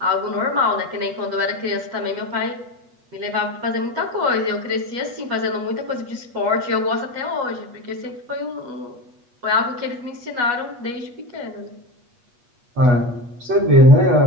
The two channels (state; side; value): late; left; 8.3 ms